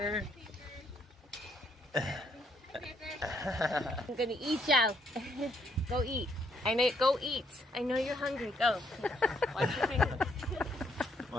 I'm gonna eat you. Go eat. Go eat. I know you're hungry. Go. Watch your fingers.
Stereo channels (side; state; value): both; normal; correlation 0.71